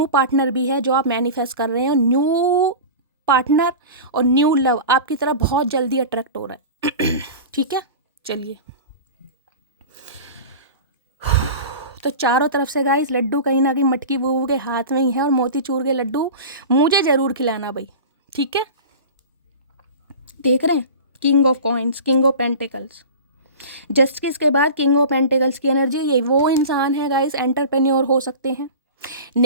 पार्टनर भी है जो आप मैनिफेस्ट कर रहे हैं, और न्यू पार्टनर और न्यू लव आपकी तरफ बहुत जल्दी अट्रैक्ट हो रहा है। ठीक है, चलिए। तो चारों तरफ से गाइस लड्डू कहीं ना कहीं मटकी बूबू के हाथ में ही है, और मोतीचूर के लड्डू मुझे ज़रूर खिलाना भाई, ठीक है। देख रहे हैं king of coins, king of pentacles, justice के बाद किंग ऑफ पेंटिकल्स की एनर्जी। ये वो इंसान है गाइस, एंटरप्रेन्योर हो सकते हैं,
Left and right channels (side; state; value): both; inverted; correlation -0.33